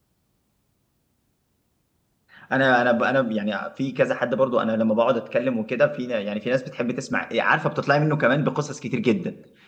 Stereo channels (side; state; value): both; identical; correlation 1.00